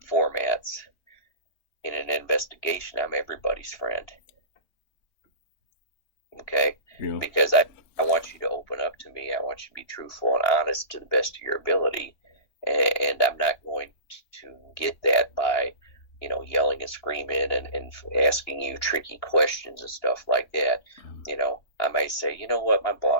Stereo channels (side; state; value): right; late; 2.9 ms